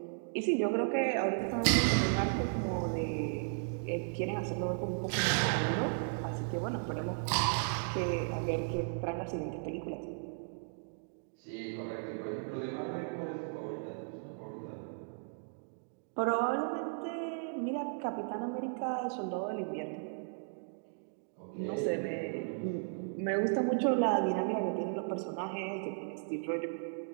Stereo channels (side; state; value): left; silent; digital silence